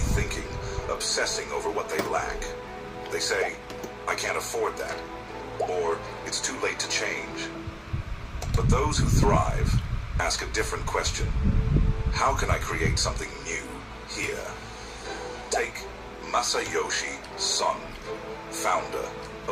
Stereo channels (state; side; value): identical; both; correlation 1.00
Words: obsessing over what they lack. They say, I can't afford that, or it's too late to change. But those who thrive ask a different question. How can I create something new here? Take Masayoshi Son, founder